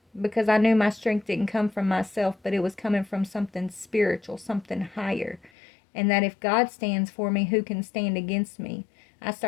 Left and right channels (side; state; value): right; drops out; at 5.5 s